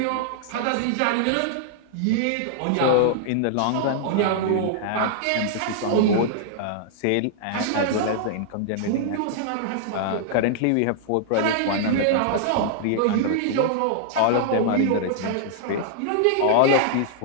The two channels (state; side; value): different; both; correlation -0.01